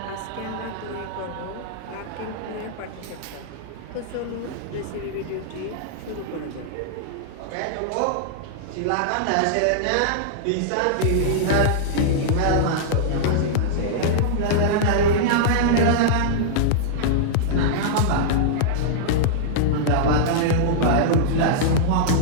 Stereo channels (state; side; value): different; both; correlation -0.02